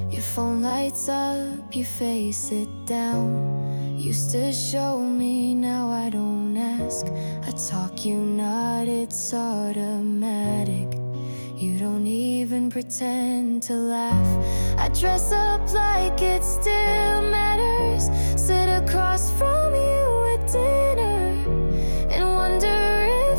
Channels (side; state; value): both; inverted; correlation -1.00